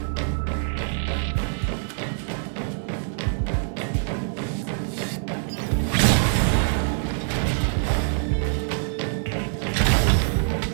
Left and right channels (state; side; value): silent; left; digital silence